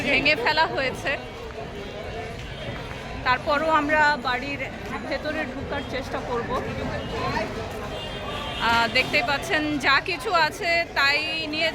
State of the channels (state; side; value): identical; both; correlation 1.00